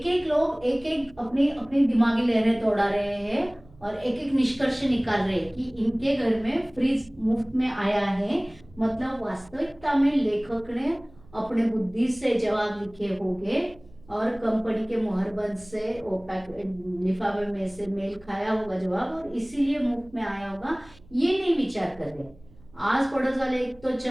एक लोग एक एक अपनी अपनी दिमागी लहरें दौड़ा रहे हैं और एक एक निष्कर्ष निकाल रहे हैं कि इनके घर में फ्रिज मुफ्त में आया है। मतलब वास्तविकता में लेखक ने अपने बुद्धि से जवाब लिखे होंगे और कंपनी के मोहरबंद से वो लिफाफे में से मेल खाया होगा जवाब, और इसीलिए मुफ्त में आया होगा। ये नहीं विचार कर रहे। आस पड़ोस वाले एक तो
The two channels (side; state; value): right; noise; hum, 25 dB below the sound